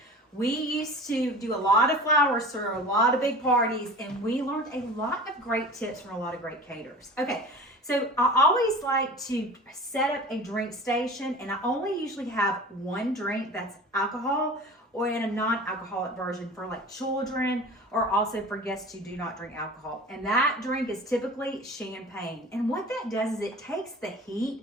We used to do a lot of flowers for a lot of big parties, and we learned a lot of great tips from a lot of great caterers. Okay, so I always like to set up a drink station, and I only usually have one drink that's alcohol or in a non-alcoholic version for like children or also for guests who do not drink alcohol. And that drink is typically champagne. And what that does is it takes the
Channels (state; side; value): normal; both; correlation 0.38